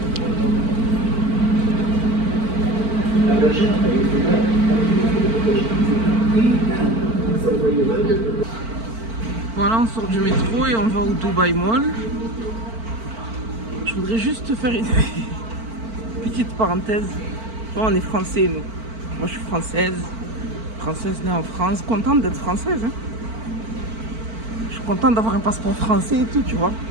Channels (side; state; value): left; late; 4.5 ms